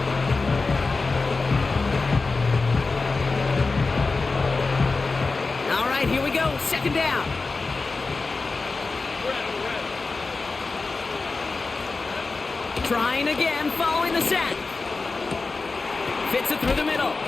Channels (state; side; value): quieter; right; 3.9 dB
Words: second down. Trying again, following the sack. Fits it through the middle.